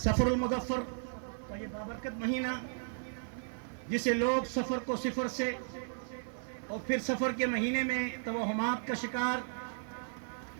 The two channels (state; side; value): silent; left; 54 dB below the other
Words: سفر المظفر کا یہ بابرکت مہینہ جسے لوگ سفر کو صفر سے اور پھر سفر کے مہینے میں توہمات کا شکار،